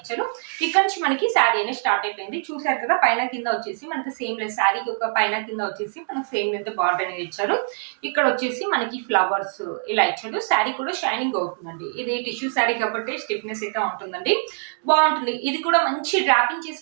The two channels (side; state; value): left; silent; digital silence